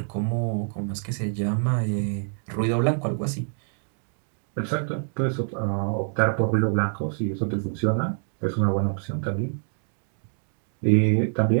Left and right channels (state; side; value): silent; left; 57 dB below the other